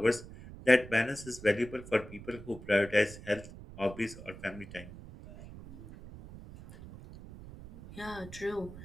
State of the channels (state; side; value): noise; right; rumble, 15 dB below the sound